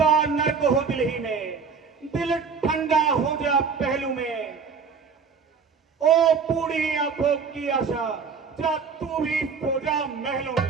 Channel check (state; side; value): quieter; left; 5.6 dB